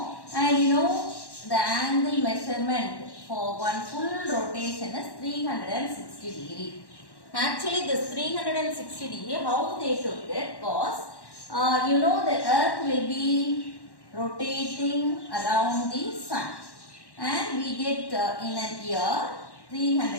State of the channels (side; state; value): right; late; 1.1 ms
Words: And you know the angle measurement for one full rotation is 360 degree. Actually this 360 degree, how they took it was, you know the earth will be rotating around the sun. And we get in a year